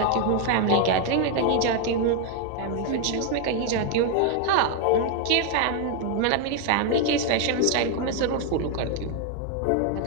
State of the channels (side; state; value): both; different; correlation 0.01